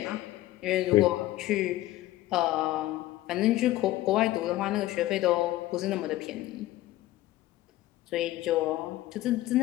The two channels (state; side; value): quieter; right; 16.1 dB